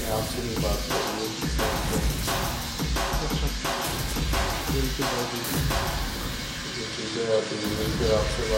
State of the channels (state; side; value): identical; both; correlation 1.00